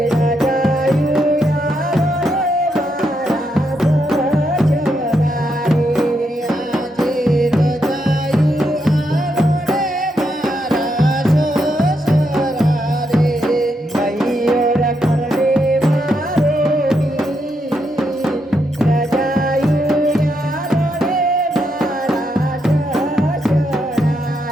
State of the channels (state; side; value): normal; both; correlation 0.80